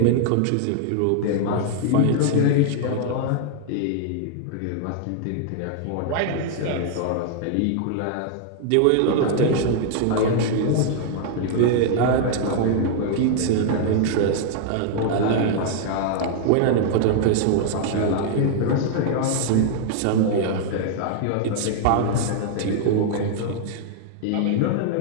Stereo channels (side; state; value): both; different; correlation 0.00